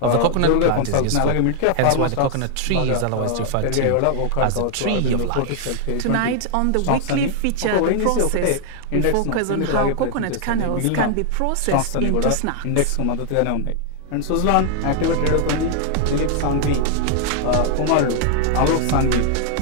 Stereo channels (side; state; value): both; different; correlation 0.00